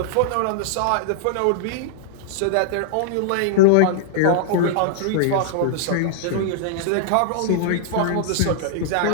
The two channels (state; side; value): different; both; correlation -0.01